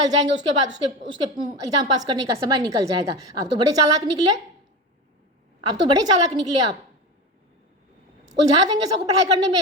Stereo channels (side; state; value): both; normal; correlation 0.25